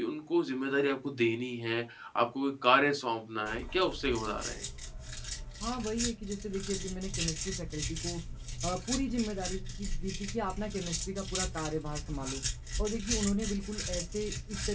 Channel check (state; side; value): identical; both; correlation 1.00